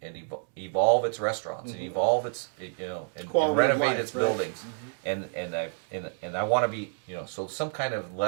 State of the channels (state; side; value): silent; left; 59 dB below the other